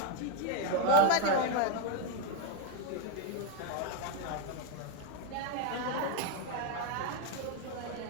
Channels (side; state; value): both; different; correlation 0.01